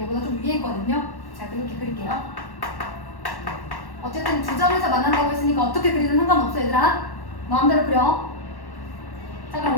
얘보다 좀 위에 있거든요. 자, 그렇게 그릴게요. 어쨌든 두 점에서 만난다고 했으니까 어떻게 그리든 상관없어 얘들아. 마음대로 그려. 자, 그럼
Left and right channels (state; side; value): late; right; 1.1 ms